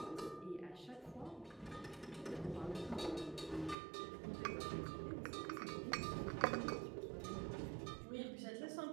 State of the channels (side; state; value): left; drops out; at 3.8 s